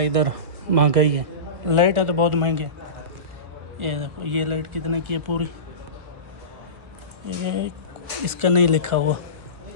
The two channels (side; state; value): left; late; 1.7 ms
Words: इधर महंगाई है। लाइट है तो बहुत महंगे। ये देखो ये लाइट कितने की है पूरी, ये इसका नहीं लिखा हुआ,